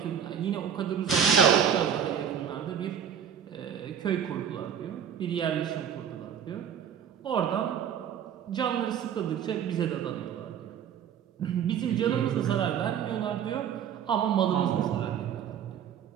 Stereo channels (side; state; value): left; quieter; 8.4 dB